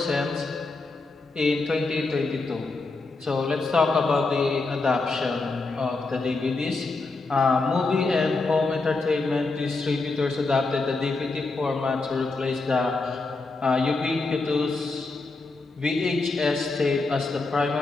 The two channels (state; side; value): quieter; right; 3.6 dB